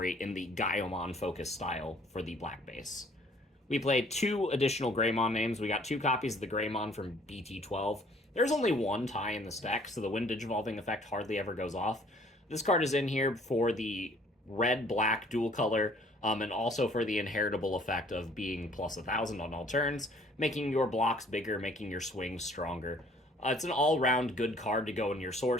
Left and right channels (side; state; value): both; normal; correlation 0.58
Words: in the Gaiomon focus style for the black base. We played 2 additional Greymon names. We got 2 copies of the Greymon from BT12. There's only 1 tie in this deck, so the Wind Digivolving effect hardly ever goes off. This card is in here for the red-black dual color, and also for the inheritable effect of being plus 1,000 on all turns, making your blocks bigger, making your swings stronger. It's an all-round good card to go in your